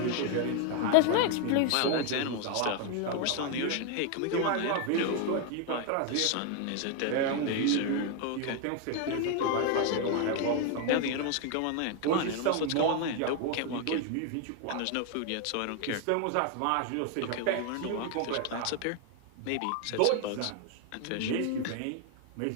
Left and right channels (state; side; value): different; both; correlation 0.01